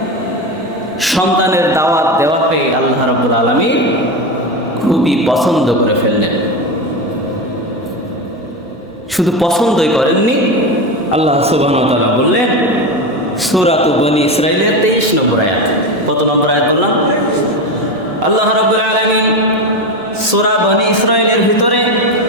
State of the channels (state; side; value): normal; both; correlation 0.18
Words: সন্তানের দাওয়াত দেওয়াকে আল্লাহ রাব্বুল আলামিন খুবই পছন্দ করে ফেললেন। শুধু পছন্দই করেননি, আল্লাহ সুবহানাহু ওয়া তাআলা বললেন সূরা বনী ইসরাঈলের 23 নম্বর আয়াত। কত নম্বর আয়াত বললাম? আল্লাহ রাব্বুল আলামিন সূরা বনী ইসরাঈলের ভিতরে